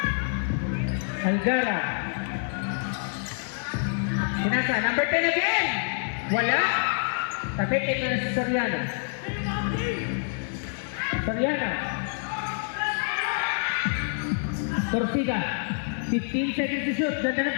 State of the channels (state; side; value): silent; right; 60 dB below the other